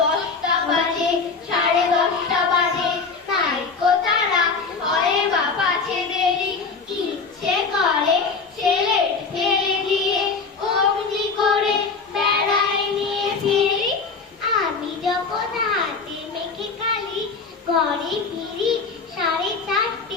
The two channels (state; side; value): quieter; right; 4.7 dB